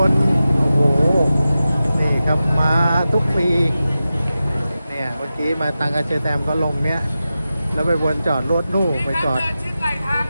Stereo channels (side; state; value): both; inverted; correlation -0.93